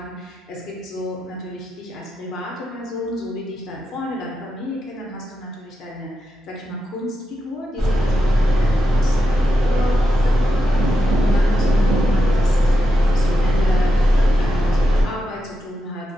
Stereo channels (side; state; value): both; normal; correlation 0.87